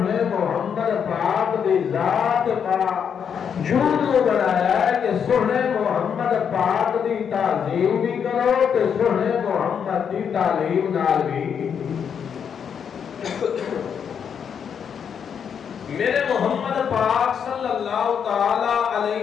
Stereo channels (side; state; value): right; quieter; 7.5 dB